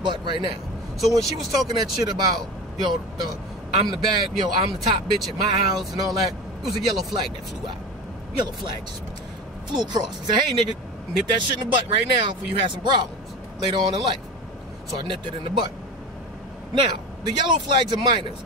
right now. So when she was talking that shit about, I'm the bad, I'm the top bitch at my house and all that, it was a yellow flag that flew out. Yellow flag just flew across. He said, hey, nigga, nip that shit in the butt right now before you have some problems later on in life. So I nipped it in the butt. Now, the yellow flags are minors.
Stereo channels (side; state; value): both; normal; correlation 0.29